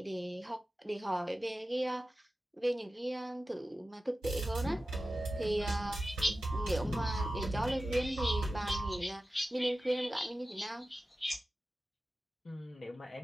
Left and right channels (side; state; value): both; normal; correlation 0.94